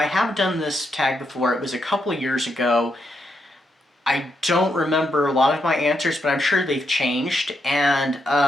have done this tag before. It was a couple of years ago. I don't remember a lot of my answers, but I'm sure they've changed. And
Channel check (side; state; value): both; normal; correlation 0.81